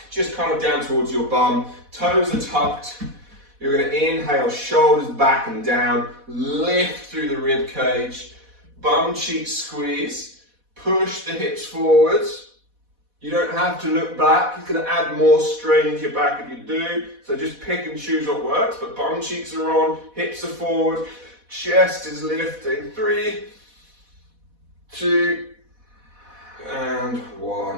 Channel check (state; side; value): late; left; 4.1 ms